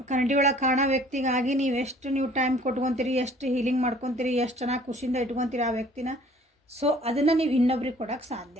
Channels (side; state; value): both; normal; correlation 0.54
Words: ಕನ್ನಡಿ ಒಳಗೆ ಕಾಣೋ ವ್ಯಕ್ತಿಗಾಗಿ ನೀವು ಟೈಮ್ ಕೊಟ್ಕೊತೀರಿ, ಎಷ್ಟು ಹೀಲಿಂಗ್ ಮಾಡ್ಕೊತೀರಿ, ಎಷ್ಟು ಚೆನ್ನಾಗಿ ಖುಷಿಯಿಂದ ಇಟ್ಕೊತೀರಿ ಆ ವ್ಯಕ್ತಿನ. ಸೊ ಅದನ್ನು ನೀವು ಇನ್ನೊಬ್ರಿಗೆ ಕೊಡೋಕ್ಕೆ